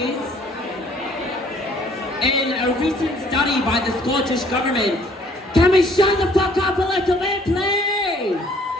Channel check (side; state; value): both; normal; correlation 0.59